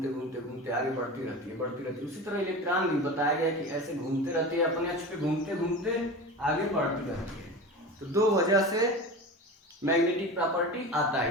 घूमते घूमते आगे बढ़ती रहती है। उसी तरह इलेक्ट्रॉन भी बताया गया कि ऐसे घूमते रहते हैं, अपने अक्ष पे घूमते घूमते आगे बढ़ती रहती है। तो दो वजह से मैग्नेटिक प्रॉपर्टी आता है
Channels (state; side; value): normal; both; correlation 0.30